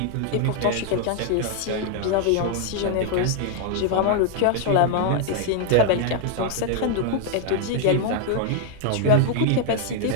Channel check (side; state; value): both; different; correlation 0.00